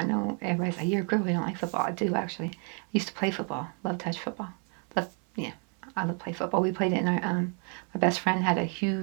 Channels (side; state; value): left; quieter; 38.7 dB